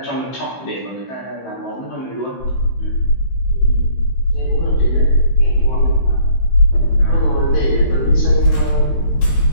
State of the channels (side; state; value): right; late; 16 ms